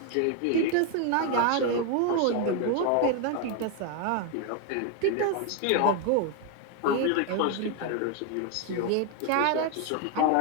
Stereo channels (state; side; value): different; both; correlation 0.01